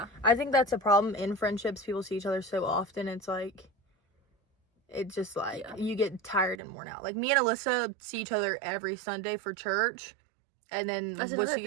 I think that's a problem in friendships. People see each other so often. It's like, it's just like, Yeah. you get tired and worn out. Like, me and Alyssa see each other every Sunday for church. And then That's we'll another see,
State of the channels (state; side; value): drops out; left; at 6.6 s